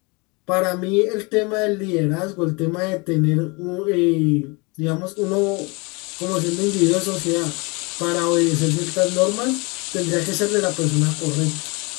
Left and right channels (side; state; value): right; quieter; 28.6 dB